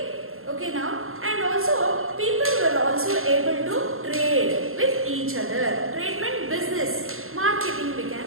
Okay now, and also people were also able to trade with each other. Trade meant business, marketing we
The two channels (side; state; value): left; late; 0.61 ms